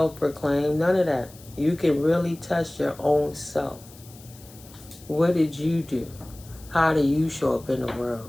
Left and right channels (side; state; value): left; noise; hiss, 22 dB below the sound